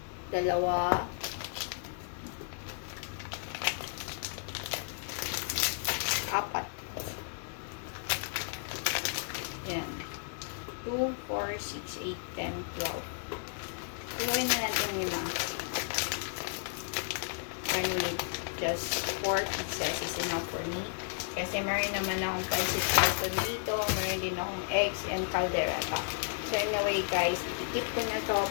2. 4. Yan. 2, 4, 6, 8, 10, 12. Iluin na natin nila. I need just 4 pieces is enough for me. Kasi meron naman akong pancit canton dito. Meron din akong eggs and caldereta. So anyway guys, i-keep ko na to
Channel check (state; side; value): silent; right; digital silence